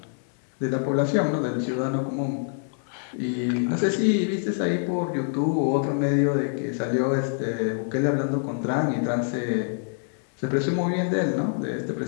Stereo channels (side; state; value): right; silent; digital silence